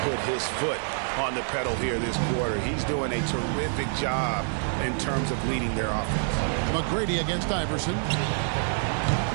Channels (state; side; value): silent; left; 60 dB below the other